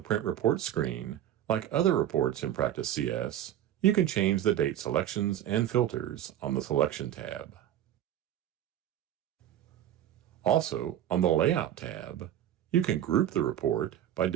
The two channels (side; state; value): left; quieter; 11.5 dB